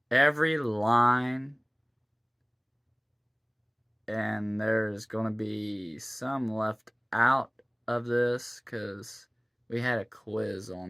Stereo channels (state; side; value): identical; both; correlation 1.00